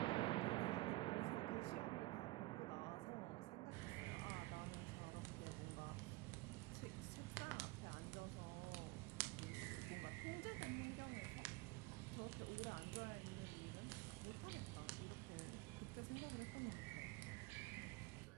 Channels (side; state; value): left; quieter; 20.9 dB